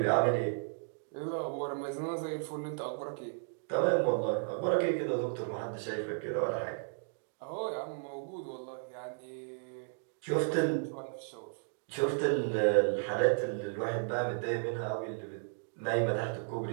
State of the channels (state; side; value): silent; left; digital silence